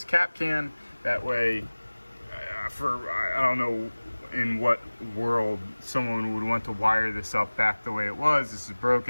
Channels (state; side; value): inverted; both; correlation -1.00